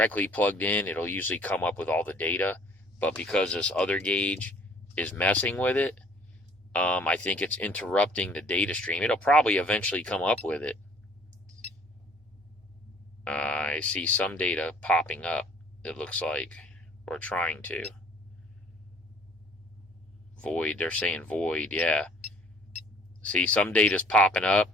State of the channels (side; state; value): both; normal; correlation 0.58